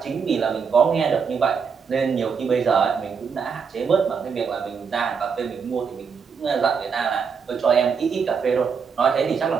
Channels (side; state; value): left; quieter; 6.1 dB